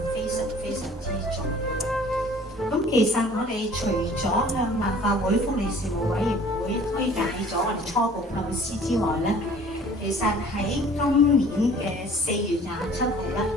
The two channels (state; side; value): normal; both; correlation 0.51